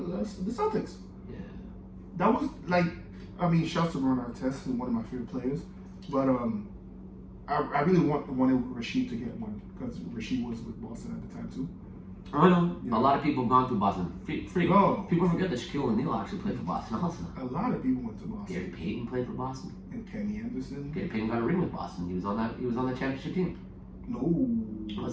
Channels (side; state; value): both; identical; correlation 1.00